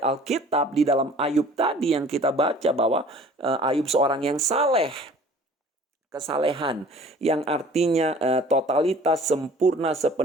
di dalam Ayub tadi yang kita baca bahwa Ayub seorang yang saleh. Kesalehan yang artinya totalitas, sempurna,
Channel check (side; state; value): both; normal; correlation 0.49